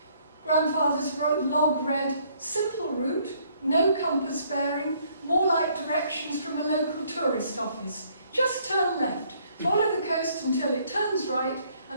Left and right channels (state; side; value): inverted; both; correlation -0.65